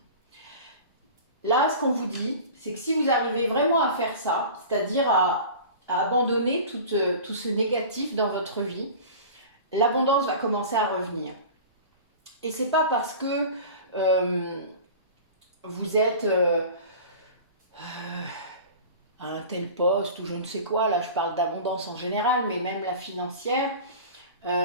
Là, ce qu'on vous dit, c'est que si vous arrivez vraiment à faire ça, c'est-à-dire à abandonner tout ce négatif dans votre vie, l'abondance va commencer à revenir. Et c'est pas parce que vous êtes à un tel poste ou je ne sais quoi, là je parle d'abondance en général, mais même la financière,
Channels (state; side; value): inverted; both; correlation -0.38